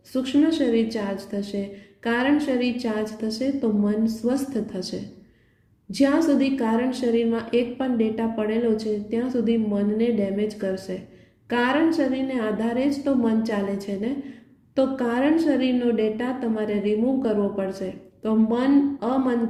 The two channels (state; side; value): identical; both; correlation 1.00